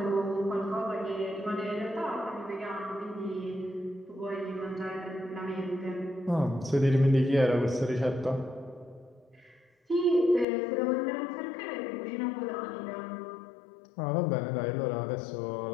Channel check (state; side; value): drops out; right; at 10.5 s